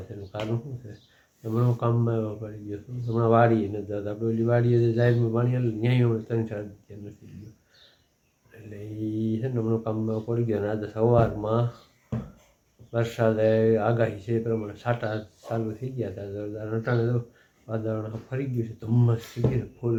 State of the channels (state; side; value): identical; both; correlation 1.00